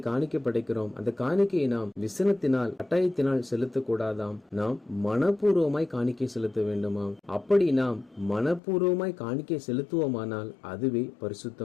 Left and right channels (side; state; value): right; drops out; at 8.6 s